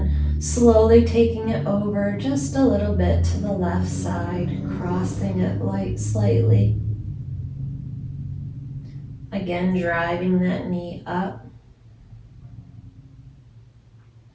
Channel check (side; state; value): both; identical; correlation 1.00